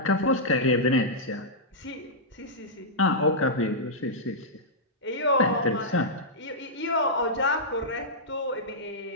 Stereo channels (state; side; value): normal; both; correlation -0.11